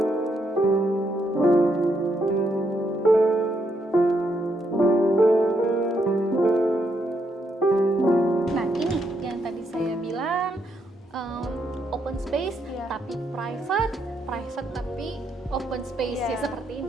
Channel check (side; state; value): both; normal; correlation 0.77